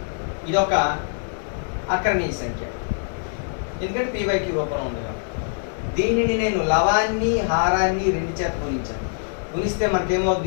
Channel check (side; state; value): right; silent; digital silence